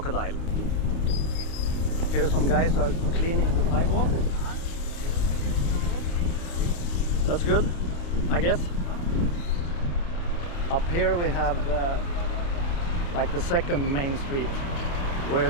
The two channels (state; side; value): late; right; 29 ms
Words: Here some guys are cleaning the sidewalk. That's good, I guess. Up here we have like the second main street, where